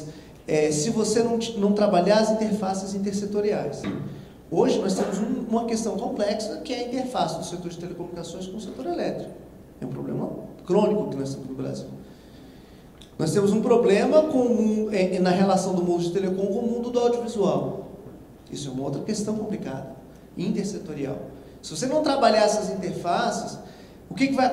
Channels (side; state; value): both; identical; correlation 1.00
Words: se você não trabalhar as interfaces intersetoriais. Hoje nós temos uma questão complexa, que é a interface do setor de telecomunicações com o setor elétrico. É um problema crônico que nós temos no Brasil. Nós temos um problema na relação do mundo de telecom com o mundo do audiovisual. Isso é uma outra questão complicada, intersetorial. Se você não trabalhar essas interfaces, o que vai